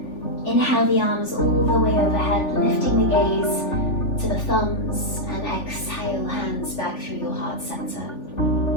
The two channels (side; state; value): right; late; 3.4 ms